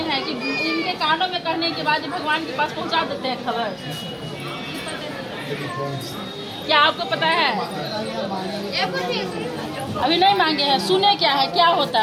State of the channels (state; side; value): identical; both; correlation 1.00